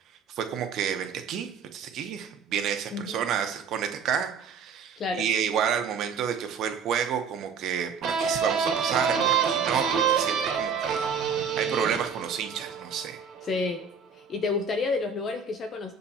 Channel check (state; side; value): quieter; left; 5.6 dB